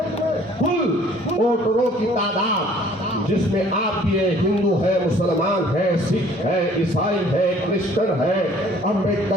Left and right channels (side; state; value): both; normal; correlation 0.55